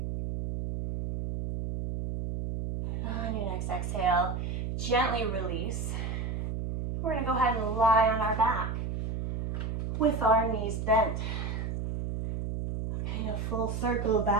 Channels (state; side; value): noise; right; hum, 3 dB below the sound